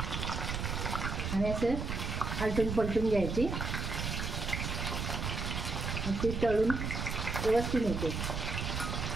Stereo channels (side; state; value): right; noise; rumble, 2 dB below the sound